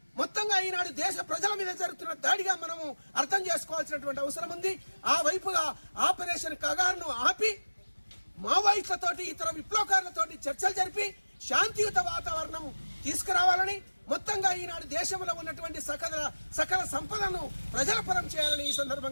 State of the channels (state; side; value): inverted; both; correlation -1.00